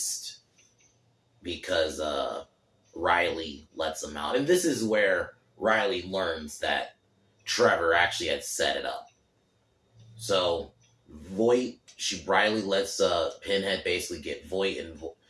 because, Riley lets them out. And this is where Riley learns that Trevor actually had set it up. So, Riley lets Pinhead basically get Voight, and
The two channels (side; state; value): both; identical; correlation 1.00